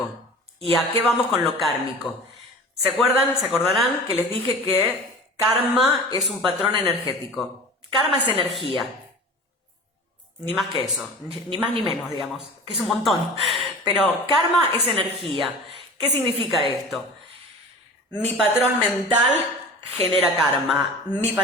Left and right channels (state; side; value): normal; both; correlation 0.38